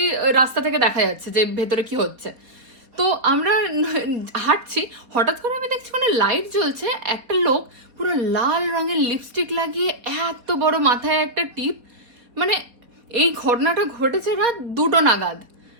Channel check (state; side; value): late; left; 4.1 ms